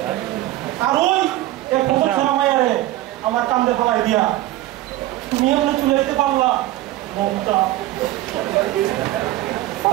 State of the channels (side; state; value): left; quieter; 16.0 dB